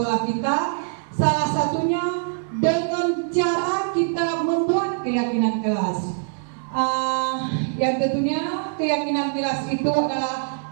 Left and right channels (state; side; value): silent; left; digital silence